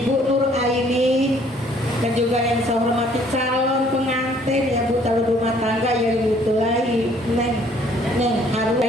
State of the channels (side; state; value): both; normal; correlation 0.60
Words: Nur Aini, dan juga yang saya hormati calon pengantin ya Bu, calon rumah tangga yang ditulai Neng Haru.